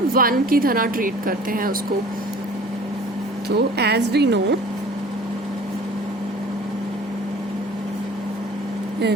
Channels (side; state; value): both; normal; correlation 0.47